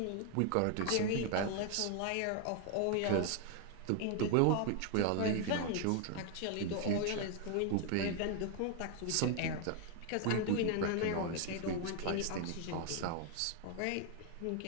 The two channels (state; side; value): different; both; correlation 0.00